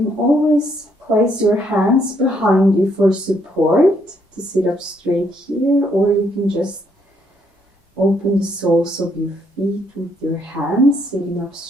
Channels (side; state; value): both; normal; correlation 0.71